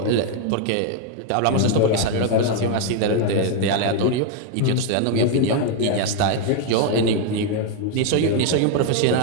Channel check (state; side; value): different; both; correlation 0.00